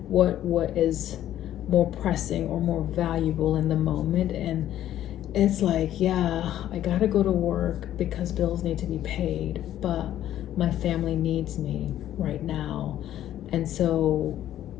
what is more pressing or more valuable in the moment. And it's like, yeah, I gotta go to work because bills need to be paid, but my family needs me right now, and so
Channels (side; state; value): right; quieter; 12.2 dB